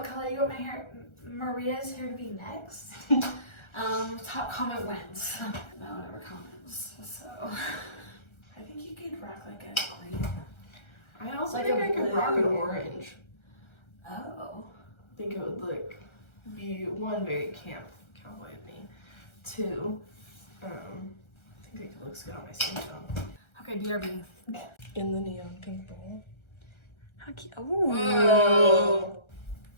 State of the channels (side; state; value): right; late; 1.3 ms